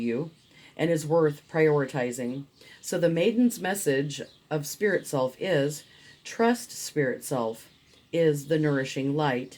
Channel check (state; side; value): identical; both; correlation 1.00